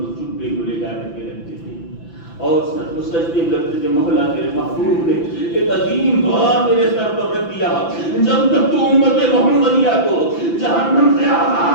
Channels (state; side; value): late; right; 5.9 ms